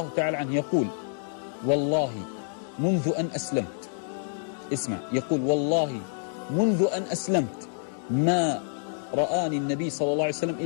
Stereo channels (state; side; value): silent; right; digital silence